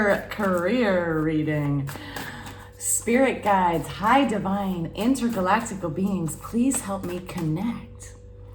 reading. Spirit guides, high divine, intergalactical beings, please help me connect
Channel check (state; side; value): identical; both; correlation 1.00